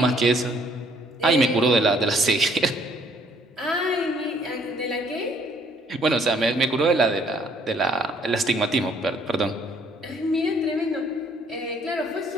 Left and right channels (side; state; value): both; normal; correlation 0.63